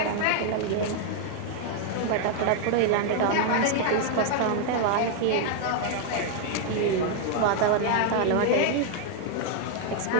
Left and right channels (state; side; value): different; both; correlation 0.00